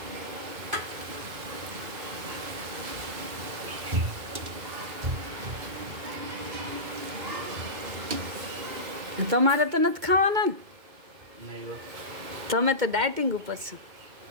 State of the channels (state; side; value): late; left; 2.4 ms